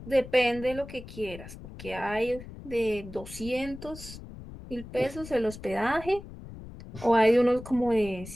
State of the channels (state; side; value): noise; left; rumble, 14 dB below the sound